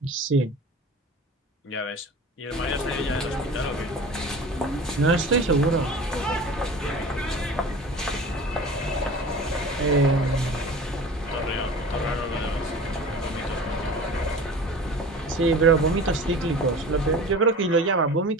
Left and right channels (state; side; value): normal; both; correlation 0.38